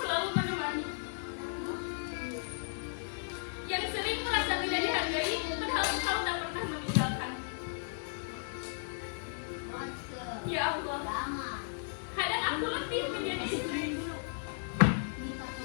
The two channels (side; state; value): right; silent; digital silence